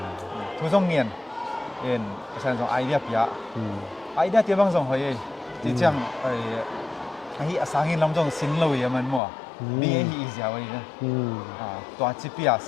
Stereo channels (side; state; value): right; drops out; at 9.2 s